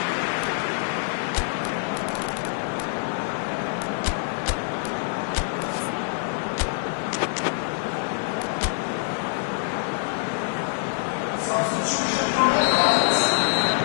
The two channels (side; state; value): right; silent; digital silence